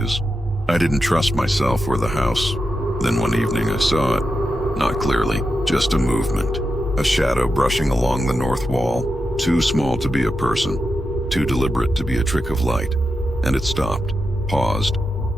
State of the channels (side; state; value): both; normal; correlation 0.88